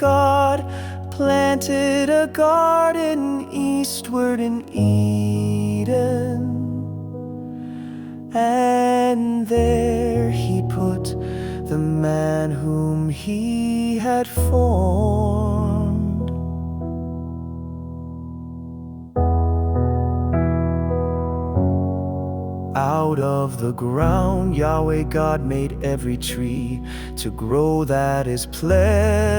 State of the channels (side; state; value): both; identical; correlation 1.00